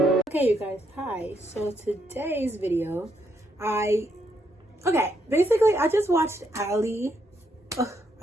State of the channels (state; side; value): normal; both; correlation 0.77